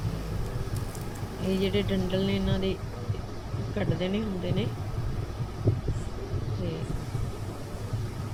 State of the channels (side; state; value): both; identical; correlation 1.00